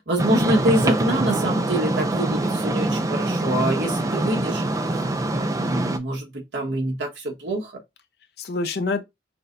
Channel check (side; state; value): both; normal; correlation 0.61